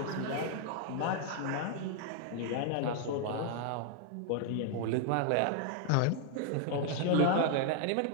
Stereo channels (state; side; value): different; both; correlation 0.00